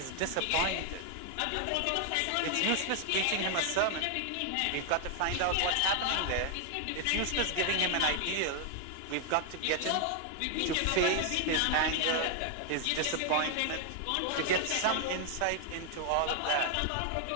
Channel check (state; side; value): different; both; correlation 0.00